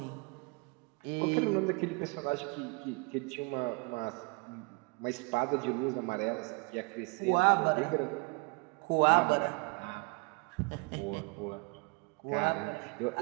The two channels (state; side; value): quieter; left; 31.1 dB